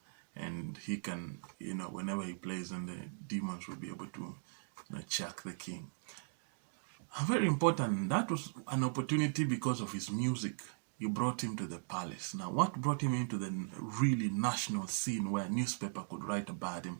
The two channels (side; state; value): left; silent; digital silence